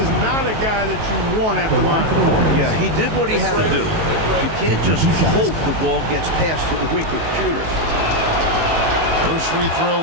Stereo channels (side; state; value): left; late; 19 ms